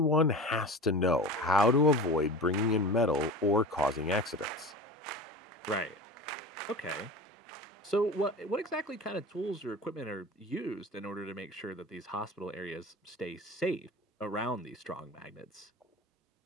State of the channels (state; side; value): normal; both; correlation 0.33